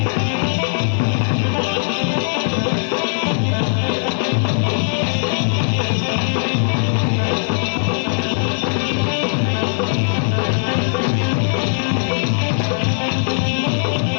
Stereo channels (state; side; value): silent; right; digital silence